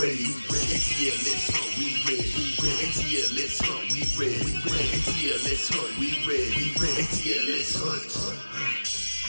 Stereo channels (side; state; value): both; inverted; correlation -1.00